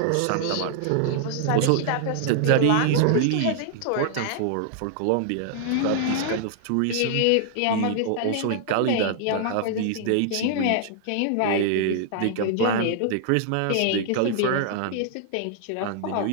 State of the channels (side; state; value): both; different; correlation -0.01